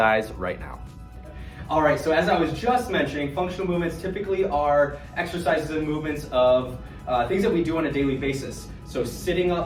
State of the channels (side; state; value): both; identical; correlation 1.00